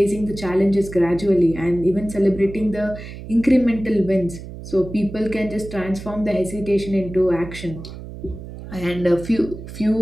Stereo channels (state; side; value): noise; right; hum, 12 dB below the sound